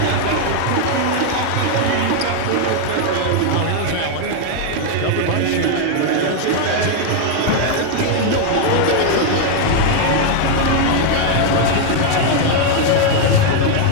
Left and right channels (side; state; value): both; different; correlation 0.00